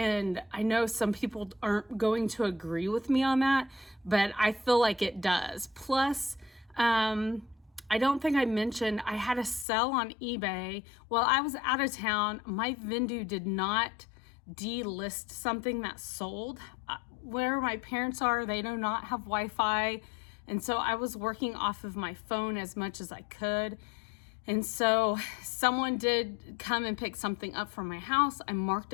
I know some people aren't going to agree with me on that, but I feel like it does. Plus, I don't think I mentioned I had a sell on eBay while I was out of town. My vendor did not delist something that sold. Where my parents are, they do not have Wi-Fi. And so I was working off of my phone as much as I could. And so someone did come and pick something up from my house. I marked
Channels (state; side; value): drops out; right; at 9.7 s